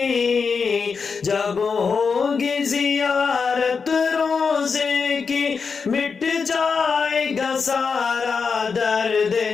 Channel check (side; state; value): right; quieter; 5.4 dB